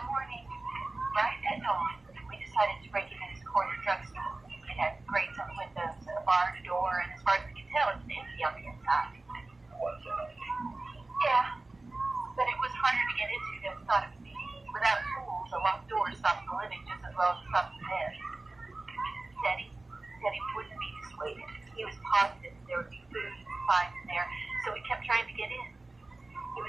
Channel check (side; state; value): left; quieter; 3.1 dB